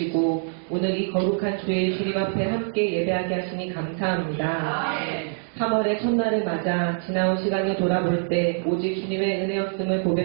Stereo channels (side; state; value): left; silent; digital silence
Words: 오늘 이 거룩한 주일 주님 앞에 함께 예배하게 하시니 감사합니다. 3월의 첫날을 맞아 지나온 시간을 돌아볼 때 오직 주님의 은혜였음을